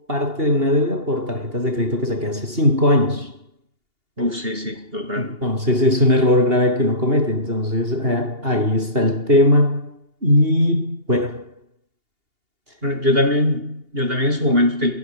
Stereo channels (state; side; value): late; left; 2.8 ms